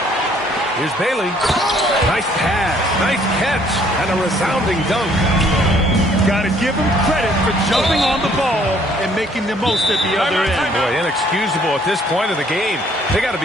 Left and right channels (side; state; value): both; normal; correlation 0.62